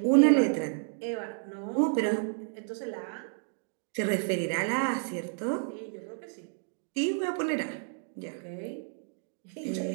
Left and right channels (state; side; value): silent; left; digital silence